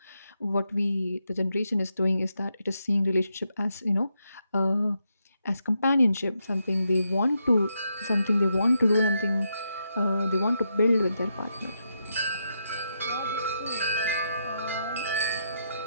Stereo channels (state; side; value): inverted; both; correlation -0.81